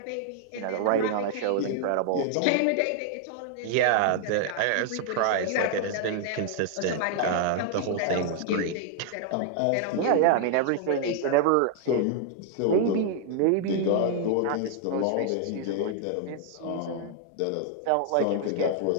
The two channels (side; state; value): both; different; correlation 0.00